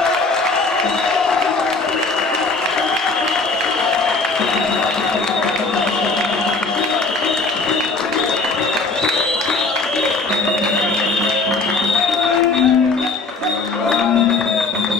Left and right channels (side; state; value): right; quieter; 3.8 dB